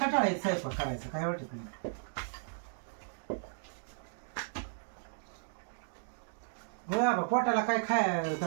स्वयंपाक करायचं, काय वाटत नाही. हो बाबा पोटाला काय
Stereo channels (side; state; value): left; silent; digital silence